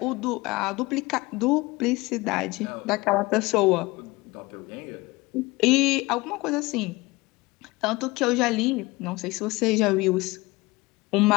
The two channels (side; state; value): right; quieter; 22.2 dB